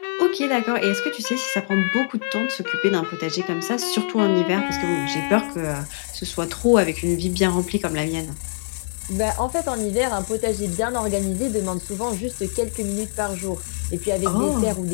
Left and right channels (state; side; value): silent; right; 61 dB below the other